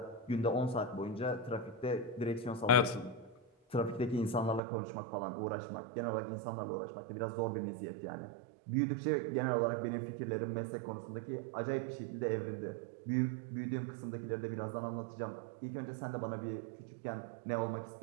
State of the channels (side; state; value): left; drops out; at 4.6 s